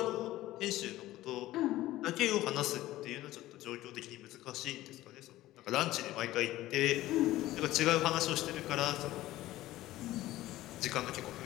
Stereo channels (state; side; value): quieter; right; 15.9 dB